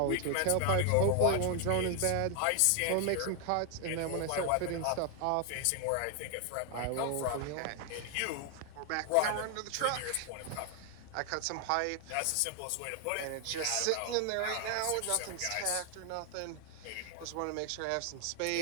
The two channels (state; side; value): different; both; correlation 0.00